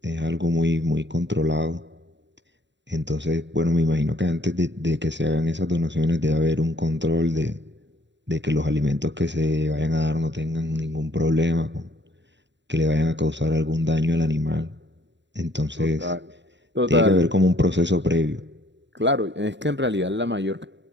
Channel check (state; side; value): late; left; 0.52 ms